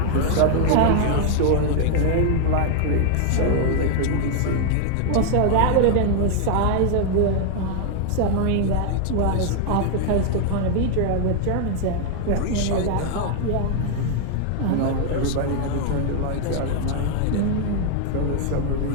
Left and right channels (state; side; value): different; both; correlation 0.00